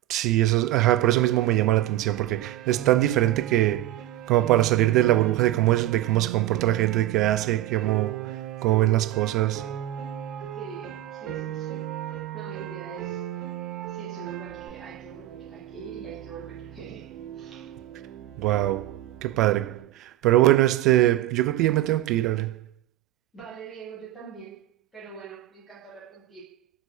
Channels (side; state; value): left; quieter; 14.8 dB